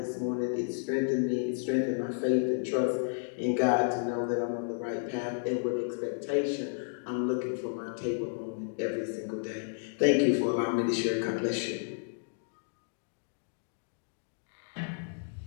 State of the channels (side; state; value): right; silent; digital silence